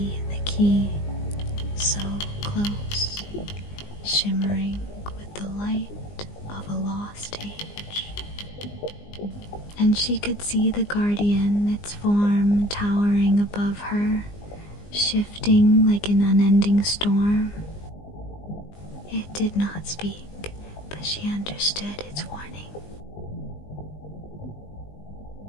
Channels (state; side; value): late; right; 20 ms